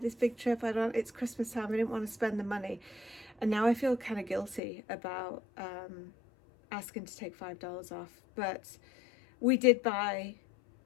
this big trip. It's Christmas time. I didn't want to spend the money. And now I feel kind of guilty about asking to take $5 off. But we did buy,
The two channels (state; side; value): drops out; right; at 4.6 s